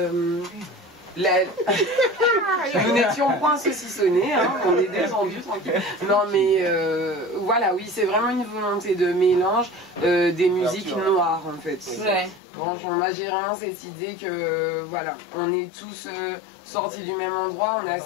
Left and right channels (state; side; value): drops out; right; at 12.4 s